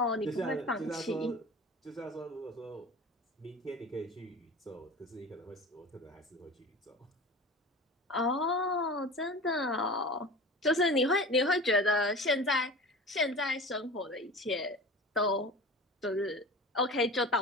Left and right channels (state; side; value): normal; both; correlation 0.35